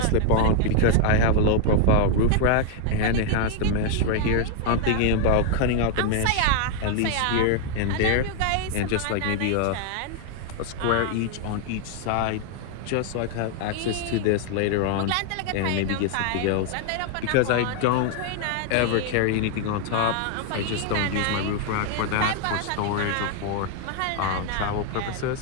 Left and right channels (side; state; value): both; different; correlation 0.00